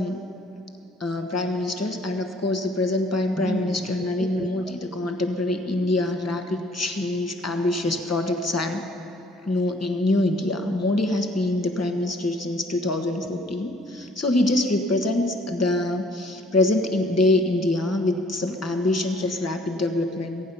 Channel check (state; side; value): normal; both; correlation 0.59